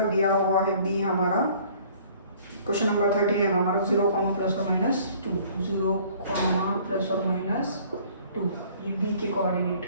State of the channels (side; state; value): both; inverted; correlation -0.55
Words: दिया हुआ है बी हमारा, क्वेश्चन नंबर 13 है हमारा 0, प्लस और माइनस 2, 0, प्लस और माइनस 2, ये बी के कोऑर्डिनेट।